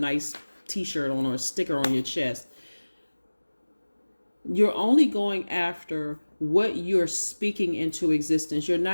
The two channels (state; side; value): inverted; both; correlation -1.00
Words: t-shirt on or a sticker on your chest. You're only going after what you're speaking into existence. You're